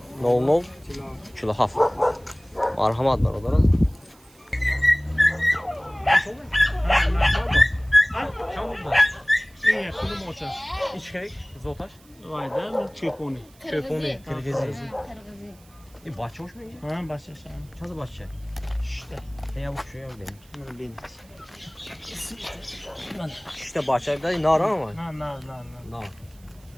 00 kilo haf. Marhamat var orada. این کدوم آچه؟ İç kek, zotaş. وایده چپونی Çöponi, Kırgızı. Kırgızı. Bahçe hoş mu? ها باشه شما Çadı bahçe. İşte Ya bu şu ya benim. من بینید İşte bahçe bir de nar ama. نه نه نه نه Nar.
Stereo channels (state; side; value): noise; right; hiss, 28 dB below the sound